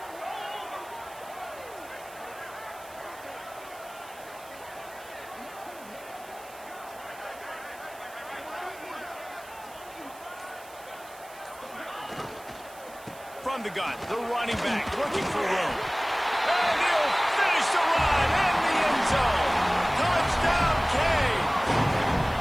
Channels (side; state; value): right; noise; hiss, 21 dB below the sound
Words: from the gun. The running back looking for room. And he'll finish the run in the end zone. Touchdown, Kane.